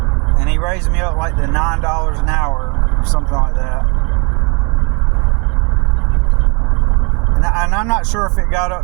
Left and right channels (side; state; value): left; quieter; 32.6 dB